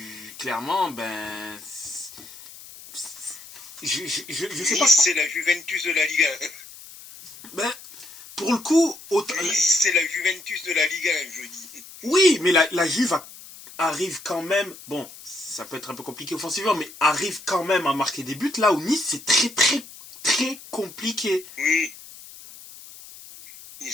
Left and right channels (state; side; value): noise; left; hiss, 17 dB below the sound